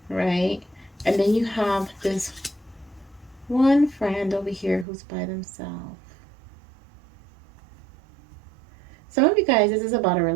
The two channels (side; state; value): left; drops out; at 4.9 s